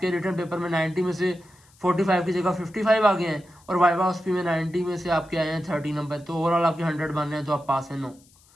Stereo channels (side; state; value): left; noise; hiss, 29 dB below the sound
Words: रिटर्न पेपर में 90 में से 45 की जगह 55 आ गए हैं और वाइवा ऑस्पी में 90 में से आपके आए हैं 30 नंबर, तो ओवरऑल आपके 100 बन रहे हैं तो आप पास हैं। नो,